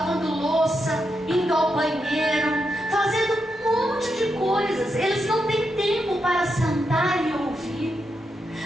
louça, indo ao banheiro, fazendo um monte de coisas. Eles não têm tempo para sentar e ouvir.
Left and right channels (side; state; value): both; normal; correlation 0.84